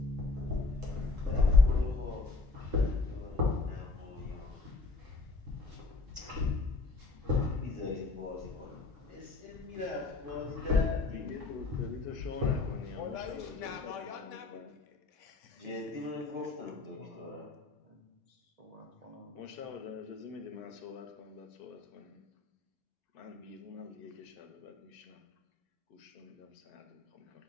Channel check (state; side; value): quieter; right; 3.7 dB